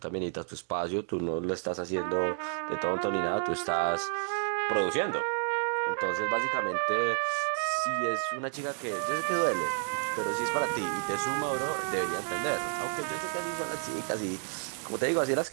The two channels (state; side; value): silent; left; 57 dB below the other